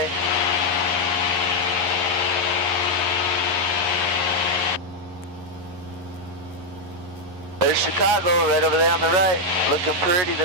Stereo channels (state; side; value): late; left; 11 ms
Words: There's Chicago right over there on the right. Looking pretty